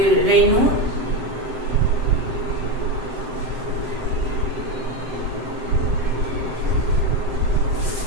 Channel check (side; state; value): left; late; 7.7 ms